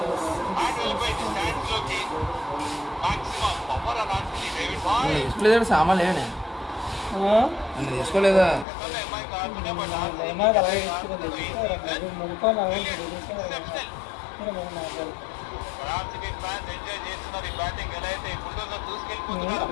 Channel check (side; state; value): right; drops out; at 8.7 s